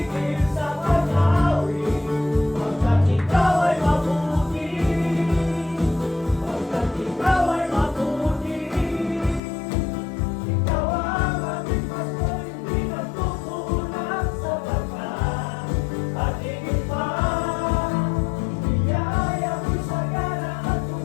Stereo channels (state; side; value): drops out; right; at 9.4 s